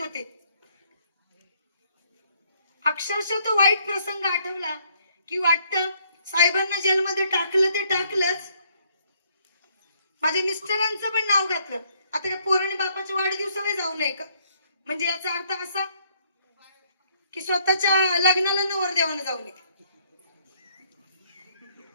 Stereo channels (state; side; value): inverted; both; correlation -0.68